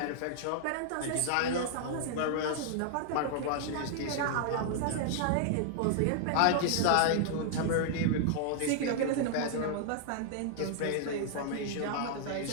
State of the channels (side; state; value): both; different; correlation -0.01